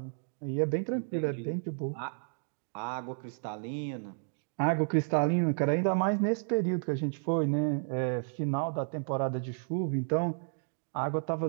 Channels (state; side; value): silent; left; digital silence